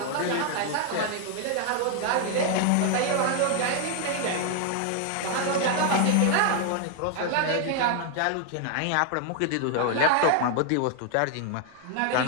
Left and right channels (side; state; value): both; different; correlation 0.00